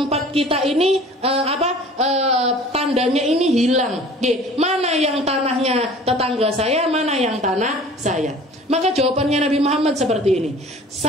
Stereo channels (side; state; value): both; normal; correlation 0.46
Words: kita ini tandanya ini hilang. Mana yang tanahnya tetangga saya, mana yang tanah saya? Maka jawabannya Nabi Muhammad seperti ini.